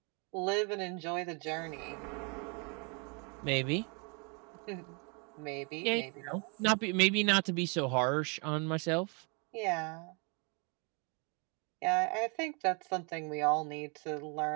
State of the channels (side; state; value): left; quieter; 34.4 dB